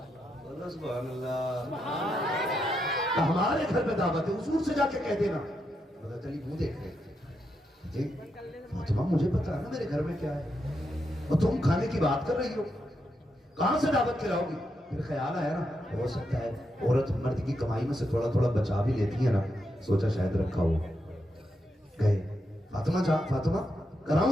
سبحان اللہ ہمارے گھر پہ دعوت ہے حضور سے جا کے کہہ دینا حضرت علی منہ دیکھ رہے فاطمہ مجھے پتا ہے نا میرے گھر میں کیا ہے اور تم کھانے کی بات کر رہی ہو کہاں سے دعوت کھلاؤ گی پھر خیال آیا نا ہو سکتا ہے عورت مرد کی کمائی میں سے تھوڑا تھوڑا بچا بھی لیتی ہے نا سوچا شاید رکھا ہو گئے فاطمہ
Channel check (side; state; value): both; normal; correlation 0.83